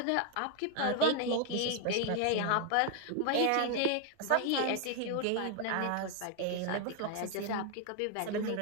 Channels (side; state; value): both; different; correlation 0.00